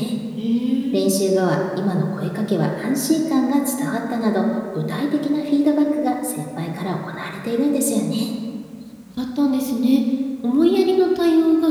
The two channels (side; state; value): both; identical; correlation 1.00